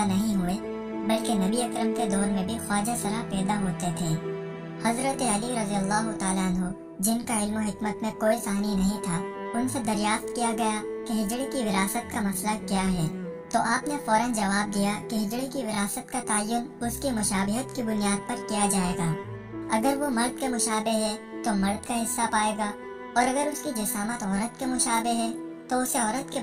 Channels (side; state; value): both; identical; correlation 1.00